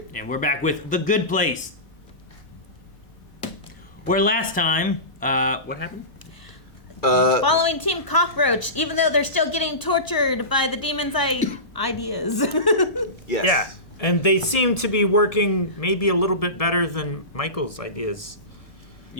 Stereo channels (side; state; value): right; late; 1.7 ms